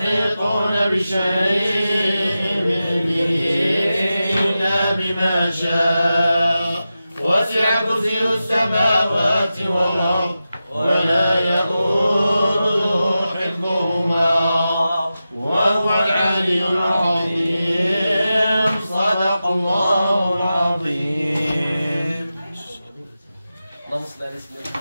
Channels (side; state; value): both; inverted; correlation -0.92